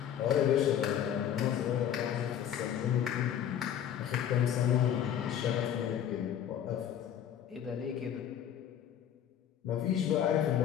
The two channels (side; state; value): right; quieter; 9.8 dB